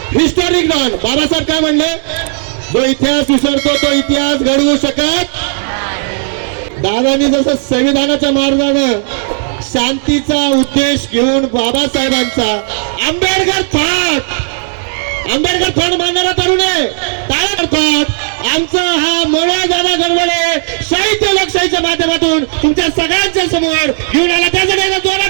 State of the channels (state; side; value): silent; left; digital silence